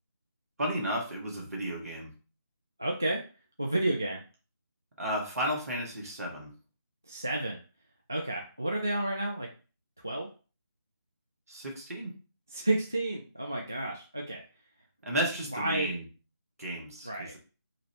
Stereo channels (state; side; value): inverted; both; correlation -0.68